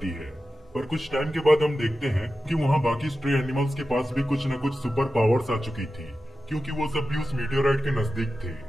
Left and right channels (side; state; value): both; normal; correlation 0.92